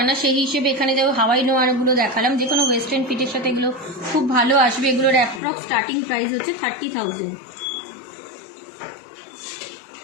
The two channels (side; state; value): right; drops out; at 5.4 s